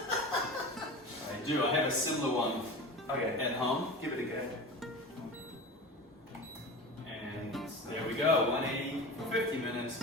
do. I have a similar one Okay, at home, give it a go. and there we go. 180 for 50 minutes,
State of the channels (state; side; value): normal; both; correlation 0.31